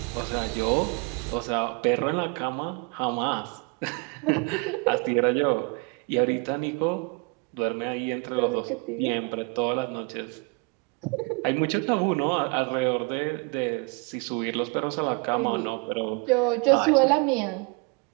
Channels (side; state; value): left; quieter; 30.7 dB